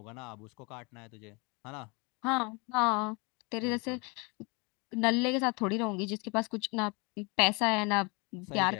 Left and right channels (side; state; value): right; quieter; 29.5 dB